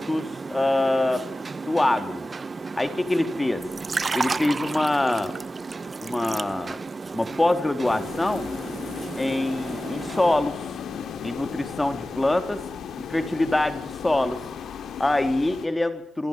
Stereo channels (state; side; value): normal; both; correlation 0.95